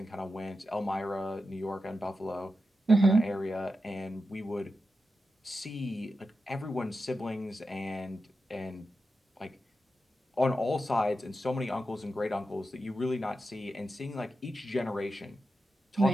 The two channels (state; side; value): normal; both; correlation 0.90